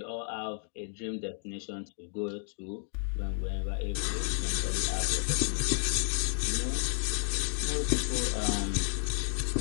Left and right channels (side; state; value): right; silent; digital silence